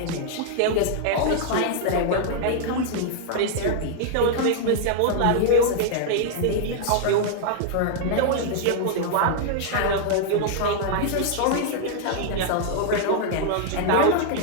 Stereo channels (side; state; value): both; different; correlation -0.01